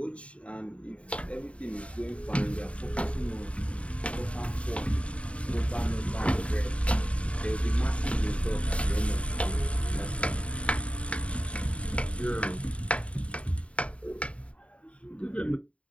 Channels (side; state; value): right; late; 0.063 ms